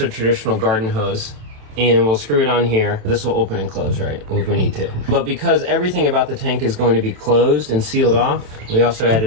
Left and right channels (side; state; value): left; late; 27 ms